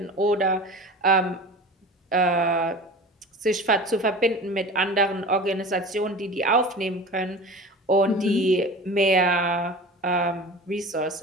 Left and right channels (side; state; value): both; normal; correlation 0.36